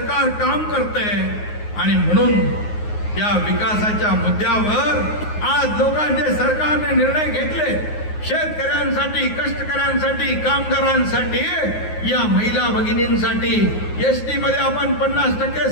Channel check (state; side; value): late; right; 9.5 ms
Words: काम करतंय. आणि म्हणून या विकासाच्या मुद्द्यावर आज लोकांचे सरकारने निर्णय घेतले. शेतकऱ्यांसाठी, कष्टकऱ्यांसाठी, कामगारांसाठी, या महिला भगिनींसाठी एसटी मध्ये आपण 50%